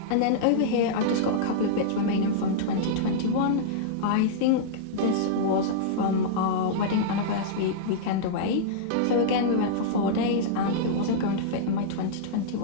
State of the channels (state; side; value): different; both; correlation -0.03